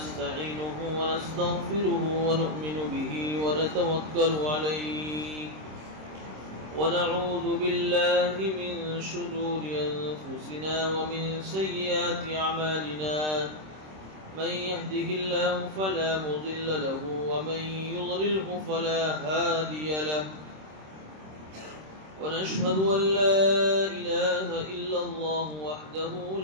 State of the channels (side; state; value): left; late; 26 ms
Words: ونستغفره ونؤمن به ونتوكل عليه ونعوذ بالله من شرور أنفسنا ومن سيئات أعمالنا من يهده الله فلا مضل له ومن يضلله فلا هادي له ونشهد أن لا إله إلا الله وحده